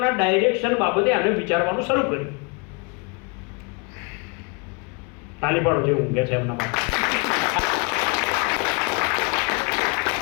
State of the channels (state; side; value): quieter; right; 32.0 dB